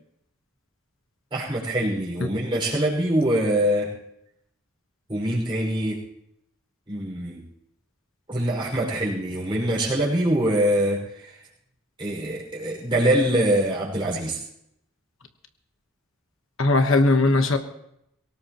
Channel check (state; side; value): normal; both; correlation 0.55